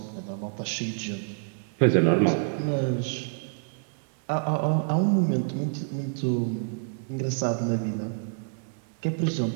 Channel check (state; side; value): silent; left; digital silence